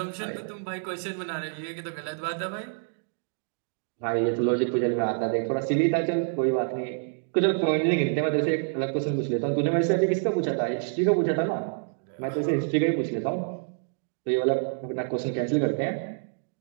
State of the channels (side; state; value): left; silent; digital silence